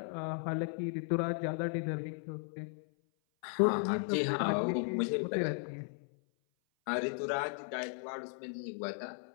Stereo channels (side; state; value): right; silent; 54 dB below the other